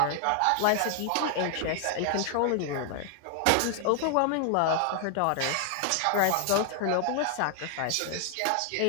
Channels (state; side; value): different; both; correlation 0.00